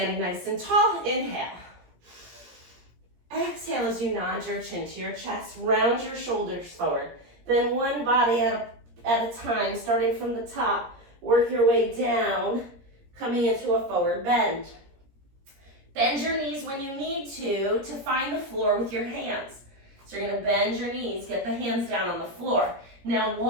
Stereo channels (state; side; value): late; left; 17 ms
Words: nice and tall, inhale. Exhale as you nod your chin to your chest, round your shoulders forward. Then one body at a time, starting from the top, work your way down, coming into a forward bend. Bend your knees when you need to find the floor with your hands. So you're gonna bend your knees, get the hands down on the floor. Now